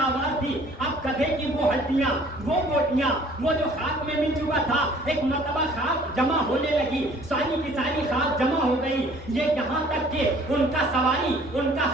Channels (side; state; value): both; normal; correlation 0.54